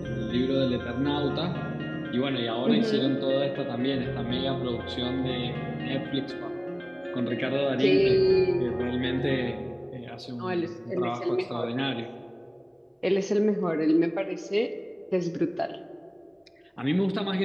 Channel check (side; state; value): both; identical; correlation 1.00